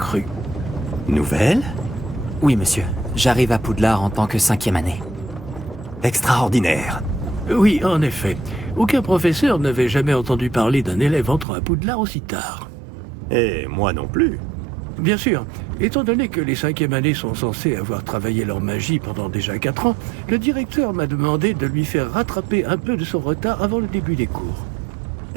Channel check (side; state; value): left; drops out; at 11.5 s